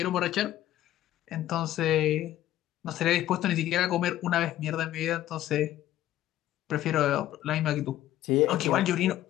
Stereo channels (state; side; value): quieter; right; 13.6 dB